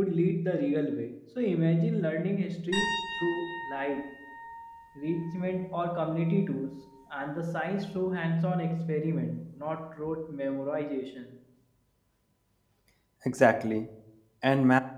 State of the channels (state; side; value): identical; both; correlation 1.00